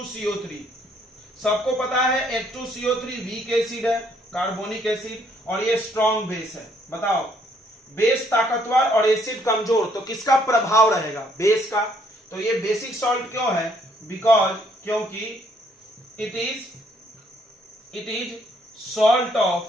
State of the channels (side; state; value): both; normal; correlation 0.68